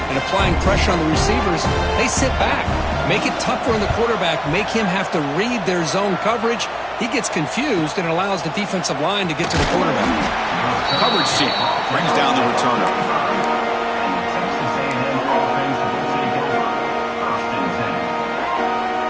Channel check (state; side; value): identical; both; correlation 1.00